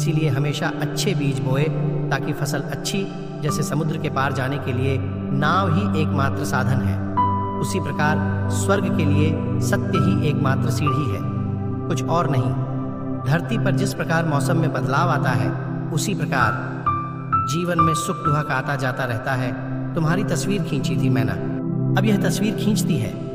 हमेशा अच्छे बीज बोए ताकि फसल अच्छी, जैसे समुद्र के पार जाने के लिए नाव ही एकमात्र साधन है, उसी प्रकार स्वर्ग के लिए सत्य ही एकमात्र सीढ़ी है, कुछ और नहीं। धरती पर जिस प्रकार मौसम में बदलाव आता है, उसी प्रकार जीवन में सुख दुख आता जाता रहता है। तुम्हारी तस्वीर खींची थी मैंने, अब यह तस्वीर खींचती है।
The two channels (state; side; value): identical; both; correlation 1.00